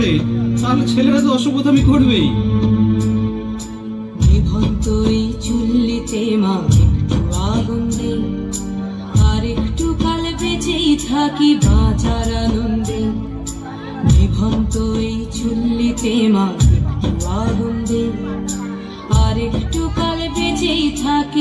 তাহলে ছেলেরা তো অসভ্যতামি করবেই। নিভন্ত এই চুল্লিতে মা একটু আগুন দে, আর একটু কাল বেঁচেই থাকি বাঁচার আনন্দে। নিভন্ত এই চুল্লিতে মা একটু আগুন দে, আর একটু কাল বেঁচেই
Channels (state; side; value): identical; both; correlation 1.00